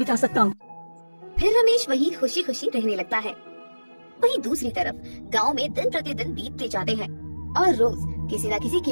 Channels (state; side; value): inverted; both; correlation -1.00